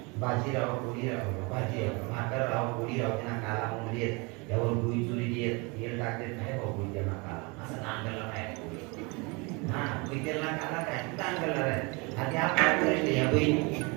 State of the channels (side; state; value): left; quieter; 28.6 dB